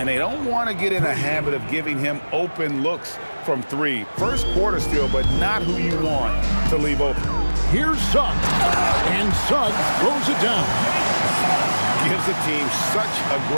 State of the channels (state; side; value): inverted; both; correlation -1.00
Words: they don't want to get in a habit of giving him open looks from 3. First quarter still, but not who you want to leave open. Here's Suggs. And Suggs throws it down. Gives the team such a